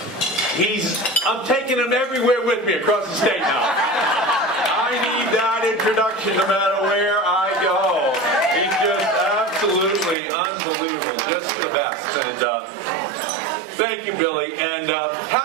I'm taking him everywhere with me across the state now. I need that introduction no matter where I go. He's just absolutely unbelievable, just the best. And thank you, Billy. And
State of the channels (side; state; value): left; drops out; at 10.2 s